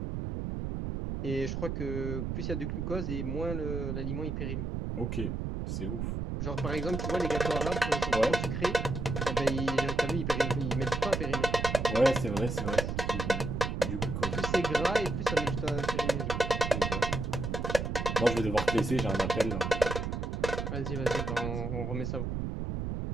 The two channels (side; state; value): right; noise; rumble, 3 dB below the sound